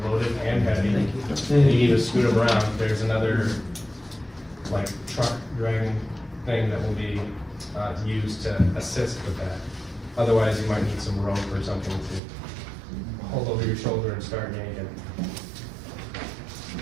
loaded and heavy, and you need to scoot them around, there's another like truck dragging thing that will be used to assist with that. Otherwise, you might need some rope or something to hold over your shoulder and start yanking.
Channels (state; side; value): drops out; left; at 12.2 s